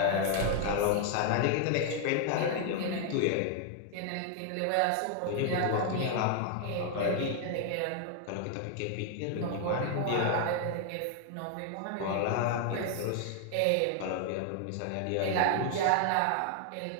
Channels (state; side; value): different; both; correlation 0.00